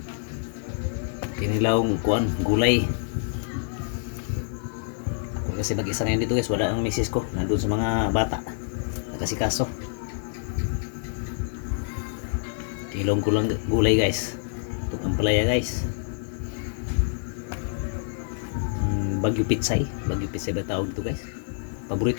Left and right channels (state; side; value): silent; right; digital silence